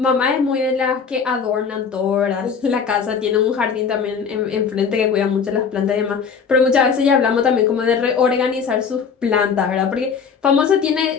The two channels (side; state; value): right; quieter; 6.2 dB